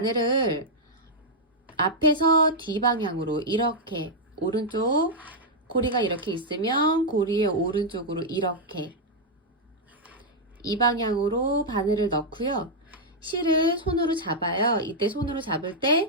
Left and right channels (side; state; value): both; normal; correlation -0.05